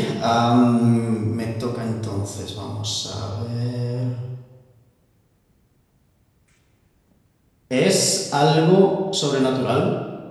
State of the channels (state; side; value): identical; both; correlation 1.00